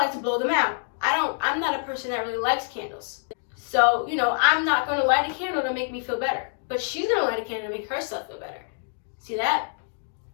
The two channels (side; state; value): right; silent; digital silence